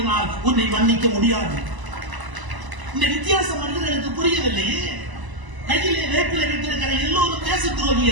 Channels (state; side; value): late; left; 1.0 ms